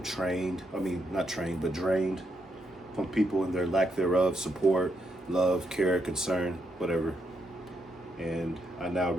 drained from people and their lack thereof, support, love, care, concern, whatever. And I now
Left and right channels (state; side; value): normal; both; correlation 0.79